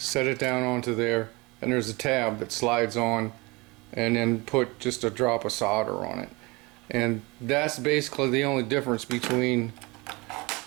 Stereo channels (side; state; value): left; quieter; 25.2 dB